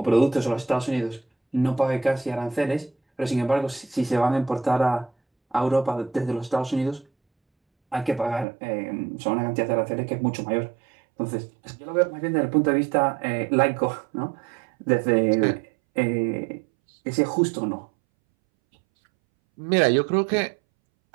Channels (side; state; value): left; drops out; at 8.5 s